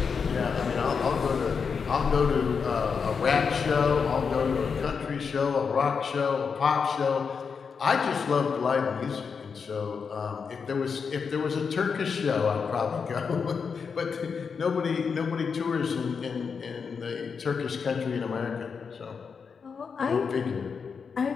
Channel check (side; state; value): right; quieter; 5.8 dB